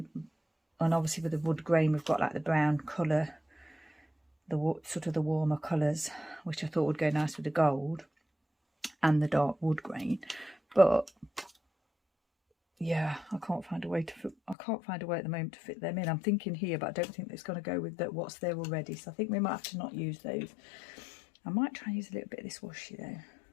obviously with the wood grain, we've got like the brown colour, the sort of the warmer colours, which I thought would go nice with the gold and the dark wood grain. But yeah, I can't find a way at the moment to fit them in. I'm thinking here, but I don't think it's going to go with what's there already. So I think we might have to not use those. I might try and use a little bit of this washi though.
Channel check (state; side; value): drops out; right; at 14.6 s